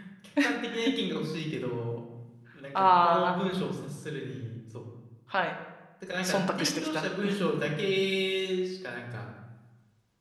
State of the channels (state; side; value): identical; both; correlation 1.00